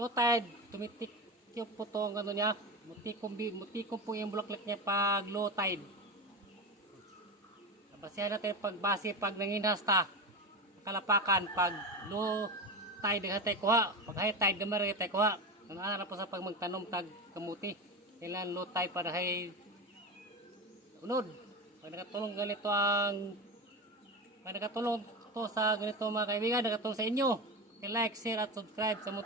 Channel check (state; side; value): normal; both; correlation 0.21